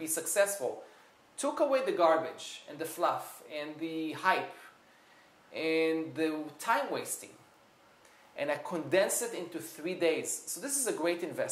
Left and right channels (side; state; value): both; identical; correlation 1.00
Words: successful, took away the garbage and the fluff and the hype and the time wasting, and I condensed it into 3 days. So this is a great